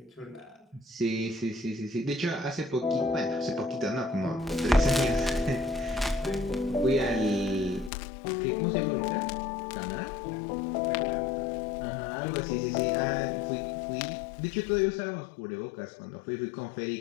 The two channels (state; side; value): drops out; right; at 7.9 s